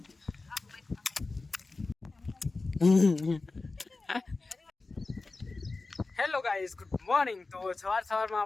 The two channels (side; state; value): right; quieter; 3.6 dB